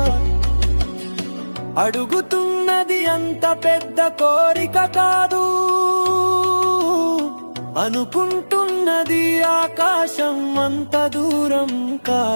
అడుగుతున్నది అంత పెద్ద కోరిక కాదు, అనుకుంటున్నది ఆకాశం అంత దూరం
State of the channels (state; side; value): inverted; both; correlation -1.00